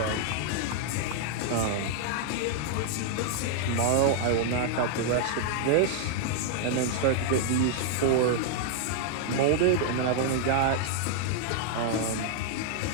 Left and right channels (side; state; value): both; different; correlation -0.01